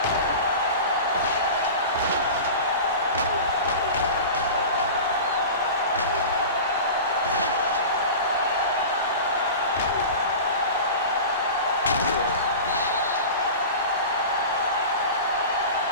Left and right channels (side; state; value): both; inverted; correlation -0.32